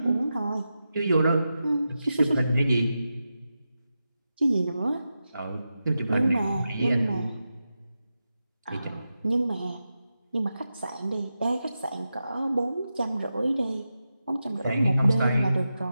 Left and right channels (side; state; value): both; inverted; correlation -0.90